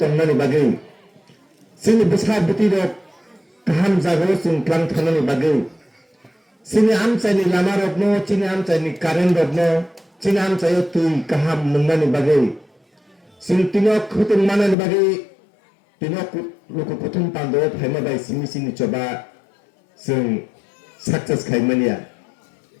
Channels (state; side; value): drops out; right; at 14.8 s